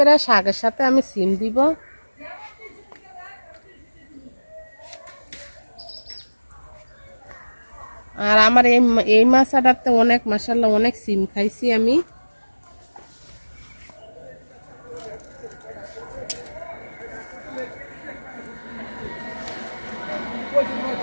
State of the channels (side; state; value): both; inverted; correlation -1.00